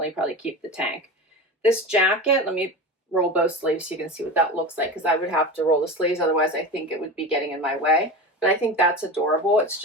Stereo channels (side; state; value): both; normal; correlation 0.28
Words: probably keep the tank. This jacket, let me roll both sleeves so you can see what that looks like, because I would have to roll the sleeves, otherwise I think it would be getting in my way. But I think that's adorable. It's